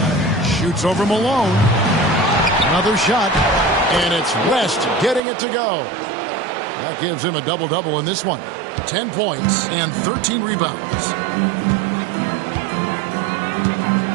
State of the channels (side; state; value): left; drops out; at 5.2 s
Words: Shoots over Malone. Another shot. And it's West getting it to go. That gives him a double-double in this one. 10 points and 13 rebounds.